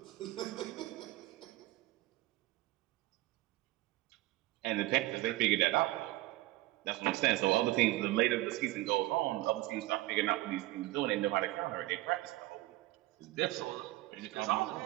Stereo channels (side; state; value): left; quieter; 18.0 dB